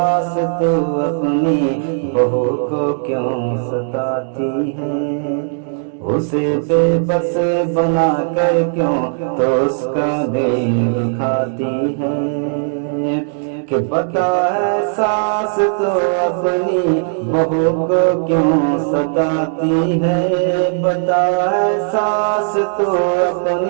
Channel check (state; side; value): silent; left; 64 dB below the other